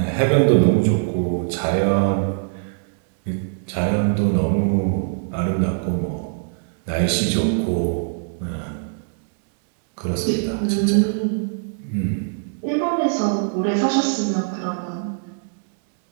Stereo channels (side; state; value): left; silent; digital silence